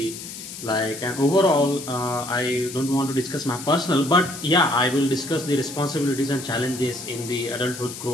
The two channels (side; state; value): left; noise; hiss, 11 dB below the sound